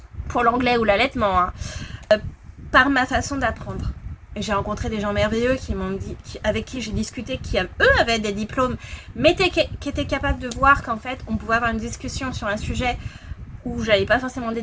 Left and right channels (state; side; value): identical; both; correlation 1.00